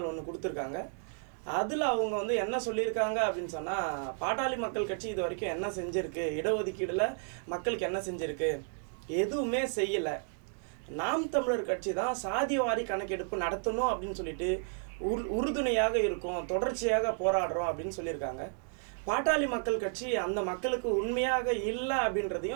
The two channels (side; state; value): left; silent; 56 dB below the other